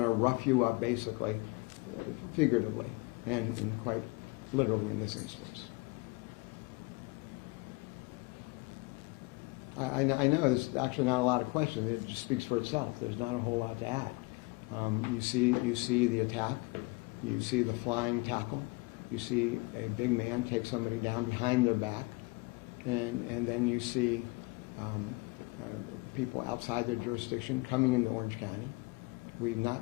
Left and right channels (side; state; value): right; quieter; 26.3 dB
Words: rough you up, basically, figuratively, and quite literally in this instance. I know there's actually not a lot of questions. It just speaks for itself. There's not a whole lot to add. You see the attack. You see the flying tackle. You see a big man take somebody down behind their back. And then you see people outside their jurisdiction coming into Orange County. We've